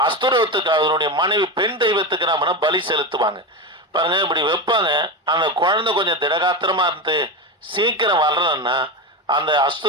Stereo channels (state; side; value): normal; both; correlation 0.18